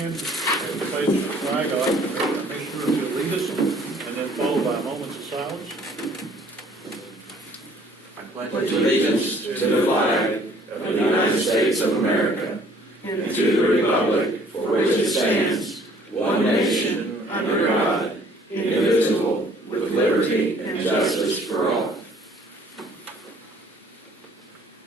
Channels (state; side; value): normal; both; correlation 0.57